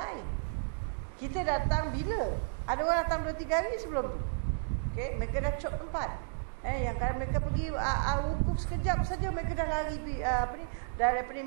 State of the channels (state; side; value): silent; left; digital silence